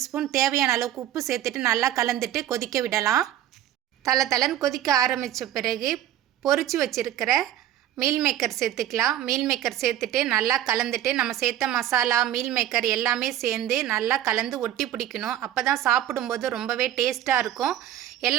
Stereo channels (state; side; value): quieter; left; 12.2 dB